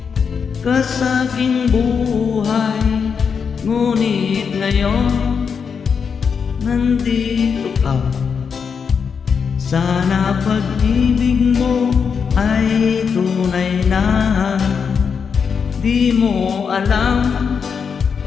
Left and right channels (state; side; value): quieter; right; 6.2 dB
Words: ka sa aking buhay, ngunit ngayon nandito ka. Sana pag-ibig mo ay tunay na. Di mo alam